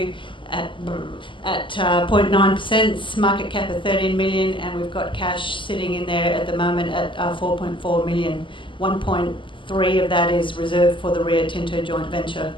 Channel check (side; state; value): right; late; 0.24 ms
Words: at 0.9%, market cap of 13 million, and we've got cash sitting in there at the moment at 4.4 million. 1.3 of that is reserved for the Rio Tinto joint venture.